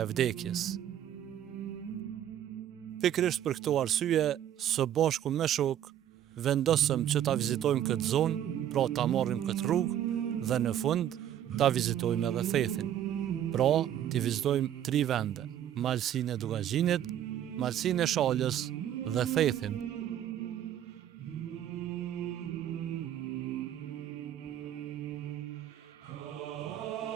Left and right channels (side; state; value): left; quieter; 10.8 dB